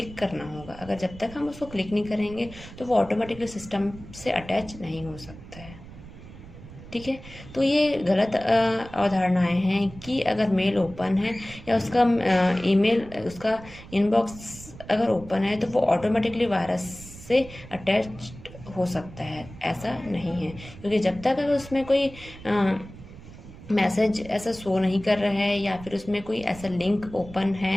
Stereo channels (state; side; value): noise; right; rumble, 17 dB below the sound